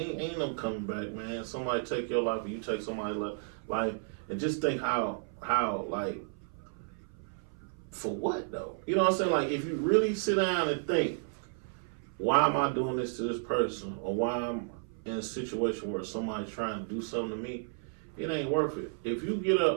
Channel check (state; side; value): silent; left; 56 dB below the other